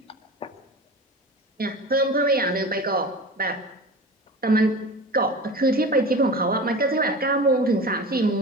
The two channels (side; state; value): both; normal; correlation 0.33